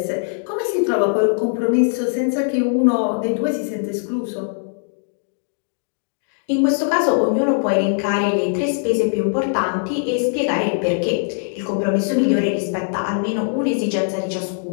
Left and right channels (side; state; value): right; silent; digital silence